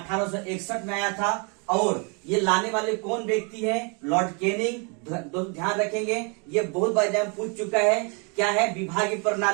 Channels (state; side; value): quieter; left; 34.3 dB